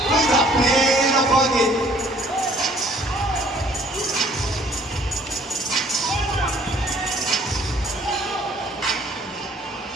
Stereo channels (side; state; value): both; normal; correlation 0.58